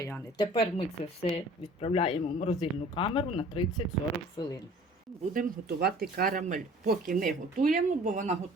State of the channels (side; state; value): both; normal; correlation 0.49